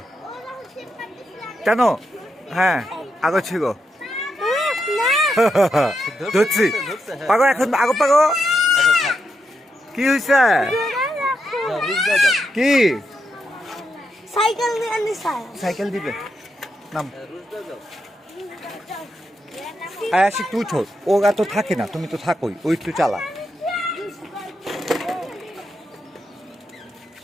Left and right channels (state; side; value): normal; both; correlation 0.83